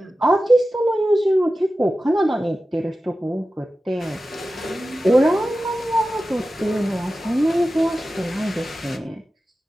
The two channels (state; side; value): normal; both; correlation 0.94